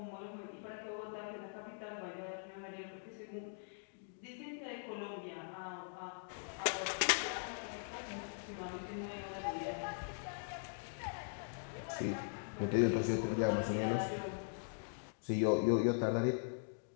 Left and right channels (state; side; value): silent; right; digital silence